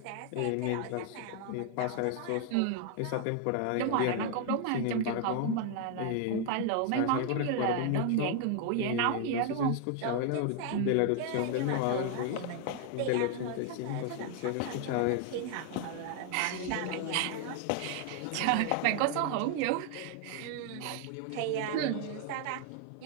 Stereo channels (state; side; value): different; both; correlation 0.00